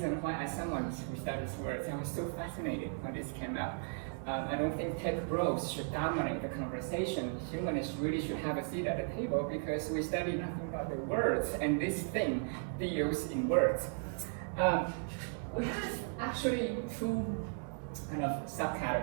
why, as someone who studies words, I was so fascinated when this came out. I don't think tech bros should dominate the conversation. Humanists really should have a seat at the table because we study nothing but the words, and this thing deals in words. We have actually two kind of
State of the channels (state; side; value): silent; left; 54 dB below the other